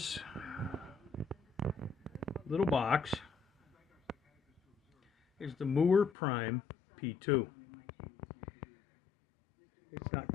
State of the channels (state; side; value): drops out; right; at 6.1 s